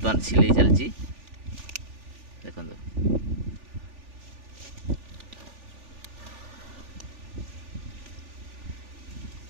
सिलाई चलती देखो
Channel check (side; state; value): left; late; 3.4 ms